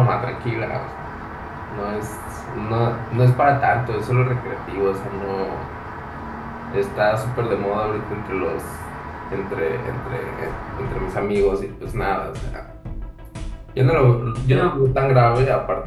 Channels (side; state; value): both; identical; correlation 1.00